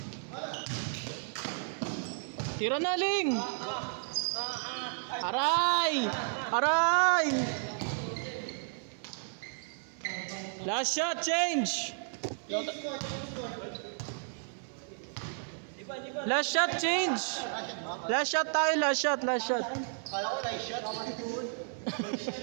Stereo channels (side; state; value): left; silent; 56 dB below the other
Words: Tira na, Ling! Aray! Aray! Last shot, change! Last shot, change! Last shot tayo, last shot, last shot. Kala ko na shot.